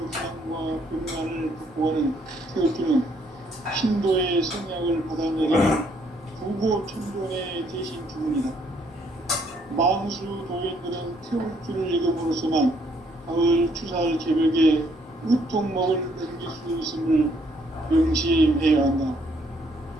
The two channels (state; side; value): normal; both; correlation 0.68